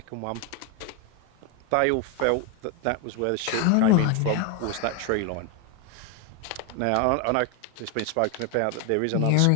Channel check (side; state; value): both; different; correlation 0.01